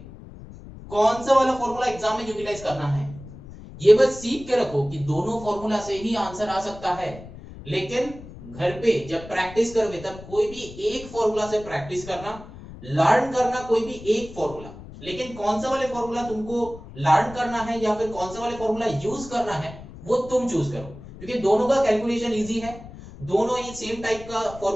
कौन सा वाला फॉर्मूला एग्जाम में यूटिलाइज करना है, ये बस सीख के रखो कि दोनों फॉर्मूला से ही आंसर आ सकता है, लेकिन घर पे जब प्रैक्टिस करोगे तब कोई भी एक फॉर्मूला से प्रैक्टिस करना, लर्न करना कोई भी एक फॉर्मूला, लेकिन कौन सा वाले फॉर्मूला तुमको लर्न करना है या फिर कौन सा वाले फॉर्मूला यूज करना है वो तुम चूज करो, क्योंकि दोनों का कैलकुलेशन इजी है, दोनों ही सेम टाइप का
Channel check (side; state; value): left; noise; rumble, 15 dB below the sound